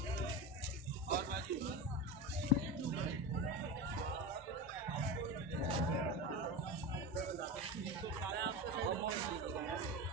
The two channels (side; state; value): both; normal; correlation 0.22